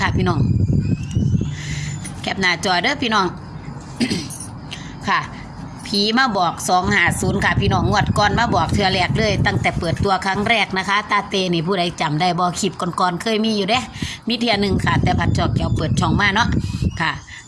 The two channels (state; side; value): identical; both; correlation 1.00